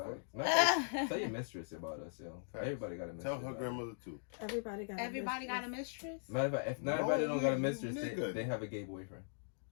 Tell your mistress about us, yo. Everybody got a mistress. Tell her grandmother too. Everybody got a mistress. Matter of fact, if not everybody don't got a mistress, they have a gay boyfriend.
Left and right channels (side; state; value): right; silent; digital silence